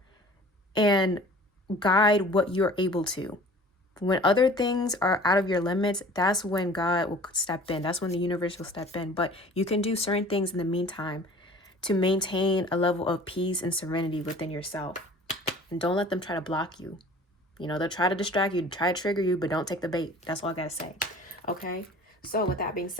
and guide what you're able to. When other things are out of your limits, that's when God will step in. That's when the universe will step in. But you can do certain things in the meantime to maintain a level of peace and serenity within yourself. And don't let them try to block you. You know, they'll try to distract you, try to trigger you, but don't take the bait. That's all I got to say. Okay? So with that being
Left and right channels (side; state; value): both; normal; correlation 0.46